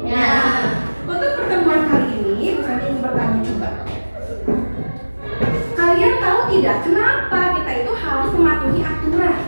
Untuk pertemuan kali ini, saya ingin bertanya coba. Kalian tahu tidak kenapa kita itu harus mematuhi aturan?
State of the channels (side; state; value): both; inverted; correlation -1.00